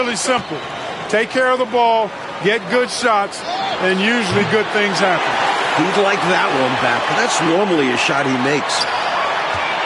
simple. Take care of the ball, get good shots, and usually good things happen. He'd like that one back. That's normally a shot he makes.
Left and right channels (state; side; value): identical; both; correlation 1.00